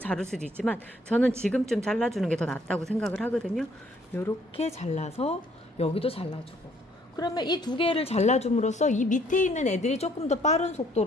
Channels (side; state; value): both; normal; correlation 0.64